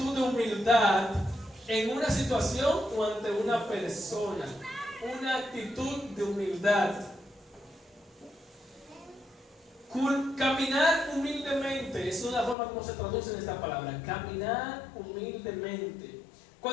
de humildad en una situación o ante una persona. Una actitud de humildad. Caminar humildemente es una forma como se traduce en esta palabra. Caminar humildemente.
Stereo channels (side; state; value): right; drops out; at 12.6 s